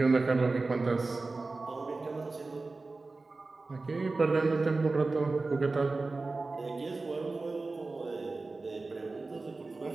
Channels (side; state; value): left; quieter; 3.6 dB